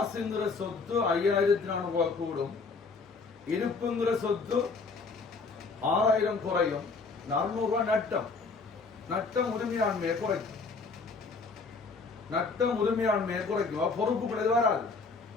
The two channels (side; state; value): right; quieter; 4.4 dB